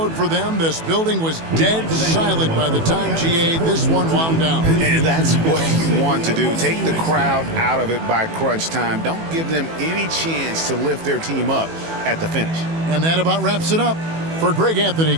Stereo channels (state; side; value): late; left; 18 ms